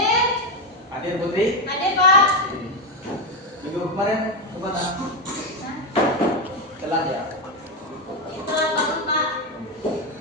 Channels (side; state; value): both; normal; correlation 0.08